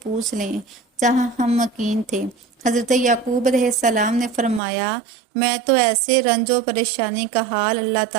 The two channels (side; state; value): left; drops out; at 4.6 s